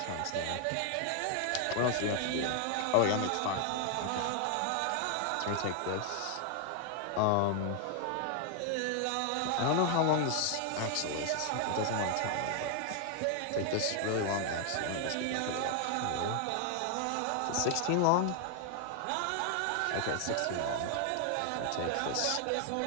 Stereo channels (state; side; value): different; both; correlation 0.00